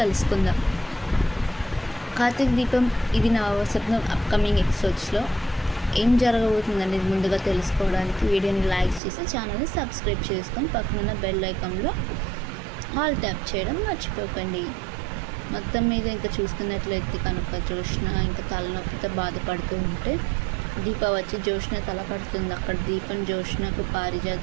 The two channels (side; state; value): left; drops out; at 9.0 s